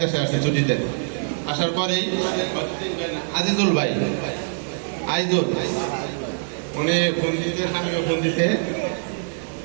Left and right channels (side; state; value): left; silent; digital silence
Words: দেশে আসছি ছুটিতে। আসার পরেই আজিজুল ভাই আইজুল উনি ফোন দিতে, স্বামীকে ফোন দিতে